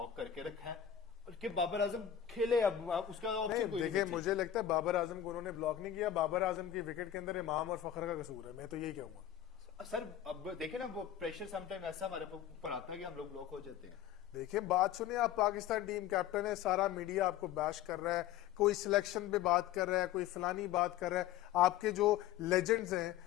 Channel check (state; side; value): quieter; right; 10.7 dB